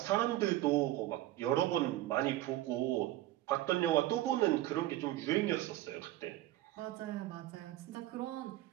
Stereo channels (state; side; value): quieter; left; 15.4 dB